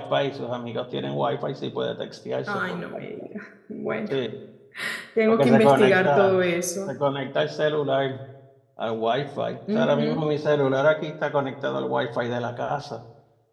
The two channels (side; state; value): both; identical; correlation 1.00